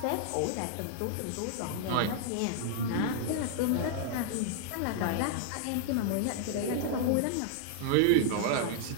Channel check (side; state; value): both; different; correlation -0.01